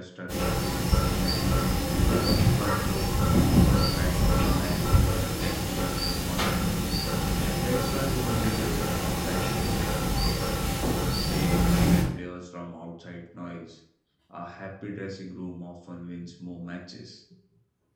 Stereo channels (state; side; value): identical; both; correlation 1.00